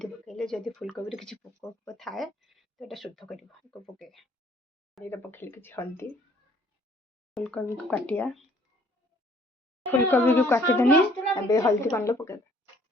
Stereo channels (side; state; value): both; normal; correlation 0.59